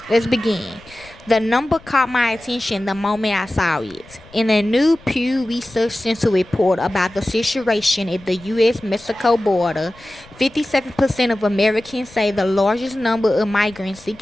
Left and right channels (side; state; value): left; noise; rumble, 24 dB below the sound